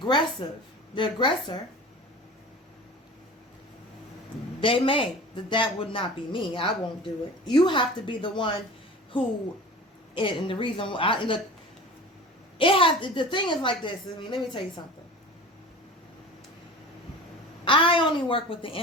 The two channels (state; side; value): normal; both; correlation 0.37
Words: They may. That would not be me. I won't do it. You have to be the one who, and the reason why, look, the thing is like this. I mean, let me tell you something. I only work with the